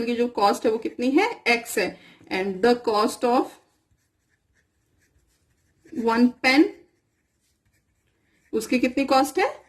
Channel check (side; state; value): both; identical; correlation 1.00